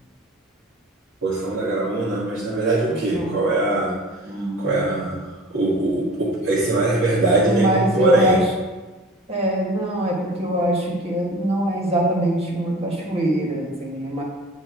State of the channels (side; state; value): both; normal; correlation 0.41